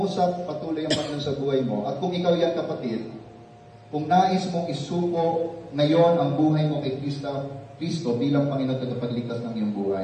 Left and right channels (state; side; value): identical; both; correlation 1.00